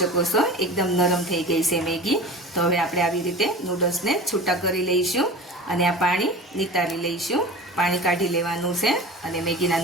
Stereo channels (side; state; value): both; normal; correlation 0.35